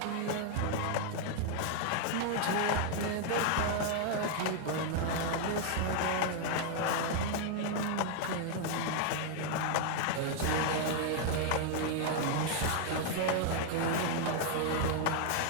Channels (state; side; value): different; both; correlation 0.00